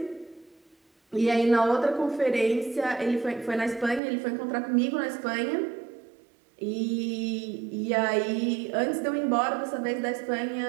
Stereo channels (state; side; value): drops out; left; at 4.0 s